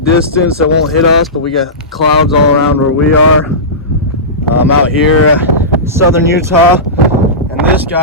that won't hit us, but we got clouds all around where we are. I'm out here, southern Utah, and this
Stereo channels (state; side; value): normal; both; correlation -0.18